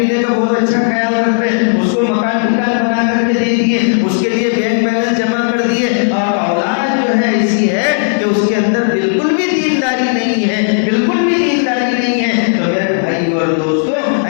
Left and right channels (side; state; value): right; silent; digital silence